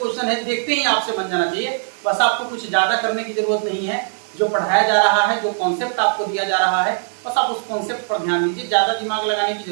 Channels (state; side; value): silent; left; digital silence